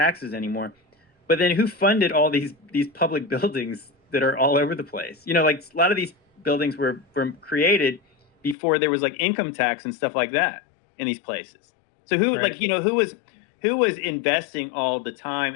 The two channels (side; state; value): right; drops out; at 8.6 s